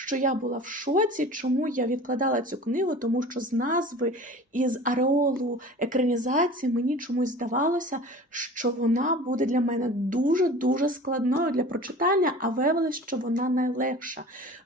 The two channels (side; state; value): both; normal; correlation 0.40